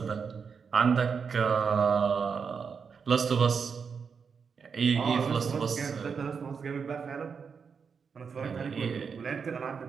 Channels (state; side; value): quieter; left; 6.0 dB